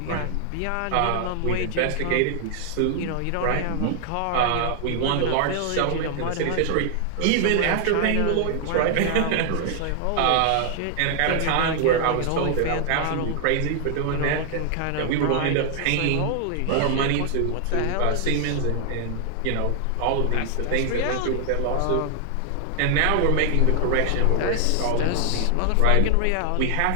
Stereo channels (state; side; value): different; both; correlation 0.00